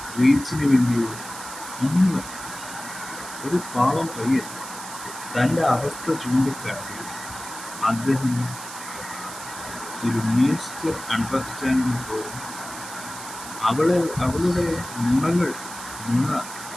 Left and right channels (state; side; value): noise; right; hiss, 12 dB below the sound